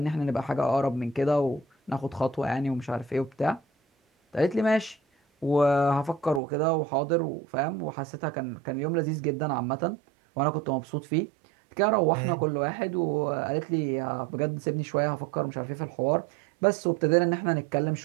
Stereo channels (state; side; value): drops out; left; at 6.4 s